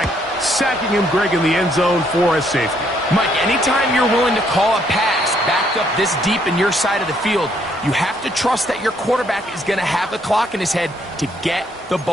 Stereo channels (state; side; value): normal; both; correlation 0.69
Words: sacking him, Greg, in the end zone for a safety. Mike, anytime you're willing to call a pass backed up this deep in your side of the field, you have to trust that your quarterback is going to have the clock in his head to get the